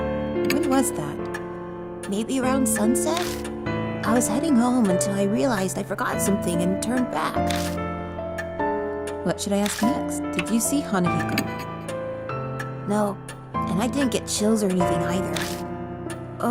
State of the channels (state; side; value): identical; both; correlation 1.00